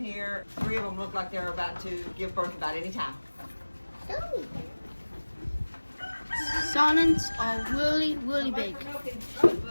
here. 3 of them look like they're about to give birth about any time. Saanens are really big.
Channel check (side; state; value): both; inverted; correlation -1.00